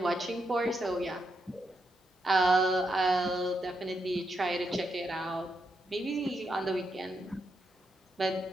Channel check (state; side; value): normal; both; correlation 0.82